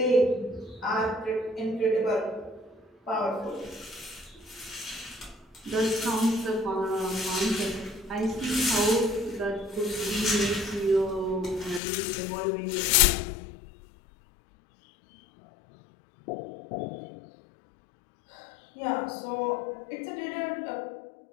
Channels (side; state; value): right; drops out; at 11.8 s